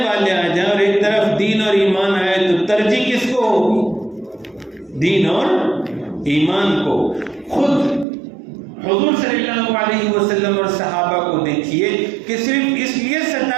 آ جائیں اور ایک طرف دین اور ایمان آئے تو ترجیح کس کو ہوگی؟ دین اور ایمان کو۔ خود حضور صلی اللہ علیہ وسلم اور صحابہ کو دیکھیے کہ صرف اس لیے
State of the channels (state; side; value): drops out; left; at 8.1 s